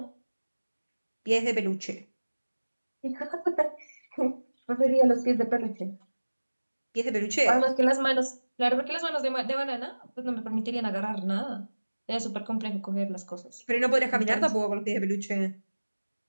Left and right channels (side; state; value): both; inverted; correlation -1.00